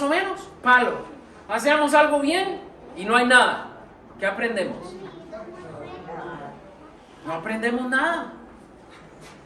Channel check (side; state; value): both; identical; correlation 1.00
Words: o menos, palo. Hacemos algo bien y no hay nada. ¿Qué aprendemos? No aprendemos nada.